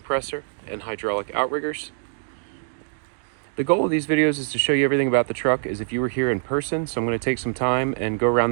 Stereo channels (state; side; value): silent; left; digital silence